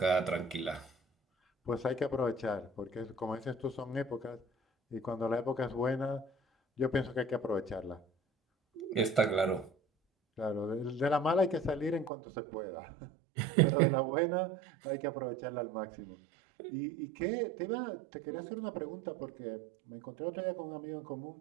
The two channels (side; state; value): left; drops out; at 12.1 s